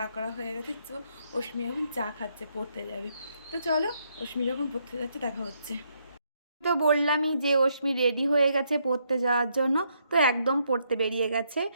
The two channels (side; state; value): both; inverted; correlation -0.75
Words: করা হয়ে গেছে। তো অশ্মি এখন চা খাচ্ছে, পড়তে যাবে। তো চলো, অশ্মি যখন পড়তে যাচ্ছে দেখা হচ্ছে। তো বললামই যে অশ্মি রেডি হয়ে গেছে পড়তে যাওয়ার জন্য। তো একদম পড়তে বেরিয়ে গেছে।